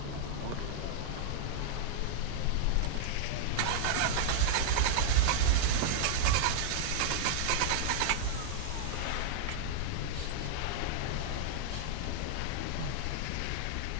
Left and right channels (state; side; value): different; both; correlation -0.01